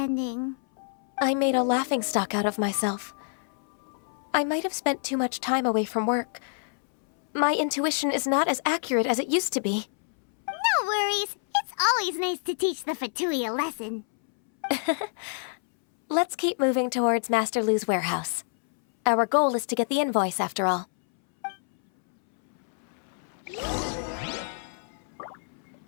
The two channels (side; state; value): right; silent; 60 dB below the other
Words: I made a laughingstock out of myself. I might have spent too much time away from work. My intuition is not as accurate as it used to be. No worries. It's always nice to teach the Fatui a lesson. Let's keep moving towards Master Lu's warehouse. Our goal is to get the invoice, after all.